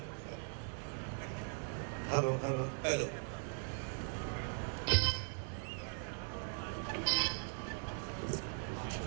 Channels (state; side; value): silent; left; 51 dB below the other